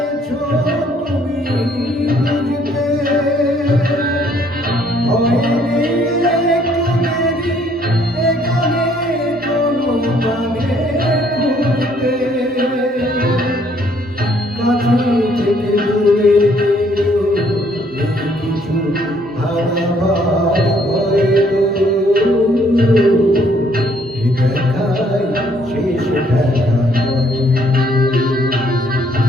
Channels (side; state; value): both; normal; correlation 0.65